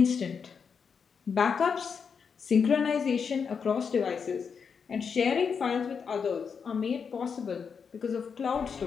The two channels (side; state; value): right; quieter; 6.2 dB